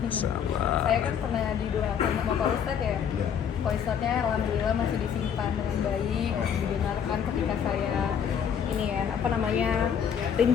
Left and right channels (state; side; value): quieter; right; 8.0 dB